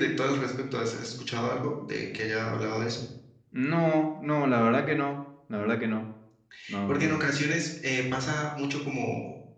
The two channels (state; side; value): identical; both; correlation 1.00